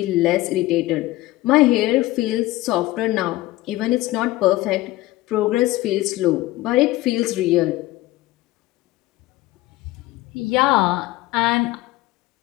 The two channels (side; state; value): right; quieter; 17.8 dB